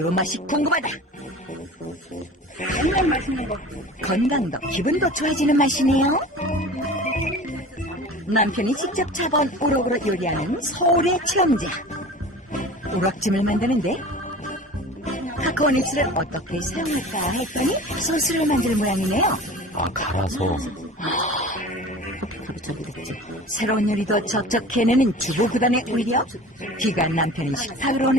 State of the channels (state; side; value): normal; both; correlation 0.39